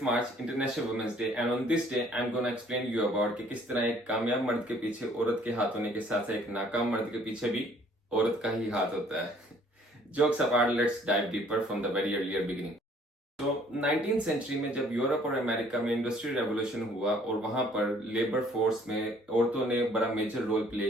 March, international women's day, and on this day I am gonna explain you about कि किस तरह एक कामयाब मर्द के पीछे औरत के हाथ होने के साथ साथ एक नाकाम मर्द के पीछे भी औरत का ही हाथ होता है। Jokes apart, let's dive deeper from the very earlier beginning. तो 19th सेंचुरी में जब यूरोप और अमेरिका में इंडस्ट्रियल रेवोल्यूशन हुआ और वहां पर लेबर फोर्स में औरतों ने बड़ा मेजर रोल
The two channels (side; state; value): both; normal; correlation 0.58